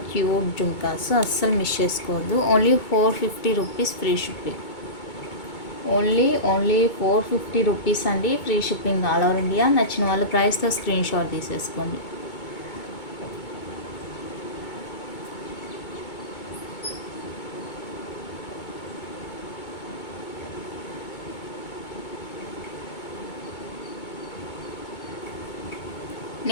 క్యూట్ జుమ్కాస్, అస్సలు మిస్ చేసుకోవద్దు. Only 450 rupees free shipping. Only 450 rupees అండి, free shipping all over India. నచ్చిన వాళ్ళ ప్రైస్తో స్క్రీన్ షాట్ తీసేసుకోండి.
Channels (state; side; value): late; right; 2.2 ms